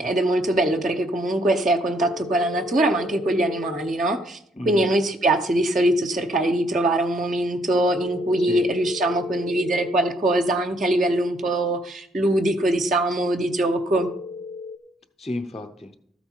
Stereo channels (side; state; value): both; normal; correlation 0.69